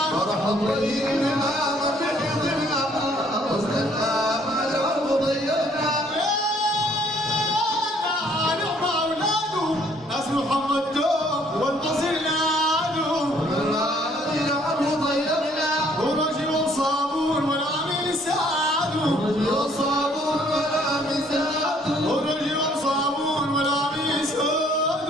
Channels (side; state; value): both; normal; correlation 0.62